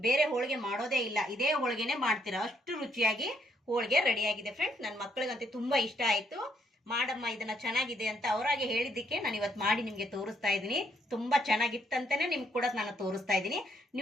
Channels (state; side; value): normal; both; correlation 0.73